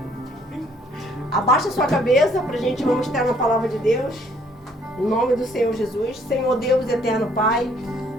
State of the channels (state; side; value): normal; both; correlation 0.63